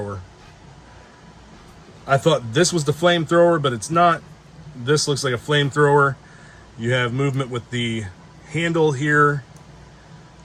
I thought this was the flamethrower, but it's not. This looks like a flamethrower. You have movement with the handle here.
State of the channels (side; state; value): both; identical; correlation 1.00